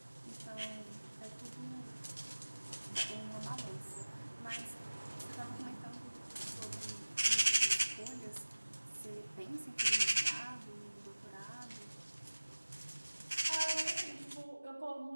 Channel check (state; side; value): inverted; both; correlation -1.00